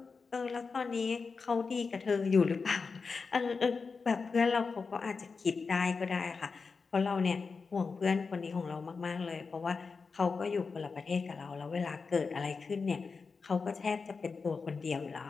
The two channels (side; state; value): right; quieter; 4.8 dB